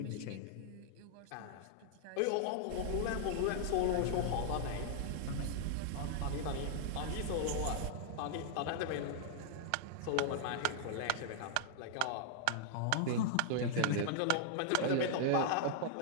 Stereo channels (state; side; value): different; both; correlation -0.01